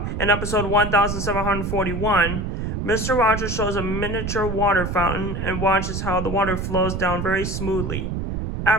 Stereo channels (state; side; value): noise; right; rumble, 3 dB below the sound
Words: in episode 1741, Mr. Rogers shows a miniature water fountain and watches how the water flows down very smoothly.